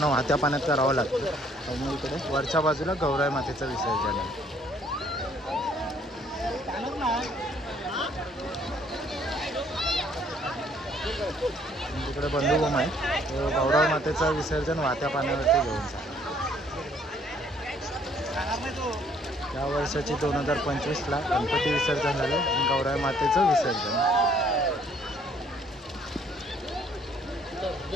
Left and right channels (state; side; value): normal; both; correlation 0.63